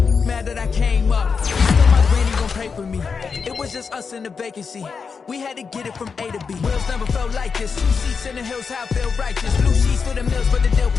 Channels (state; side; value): quieter; right; 5.5 dB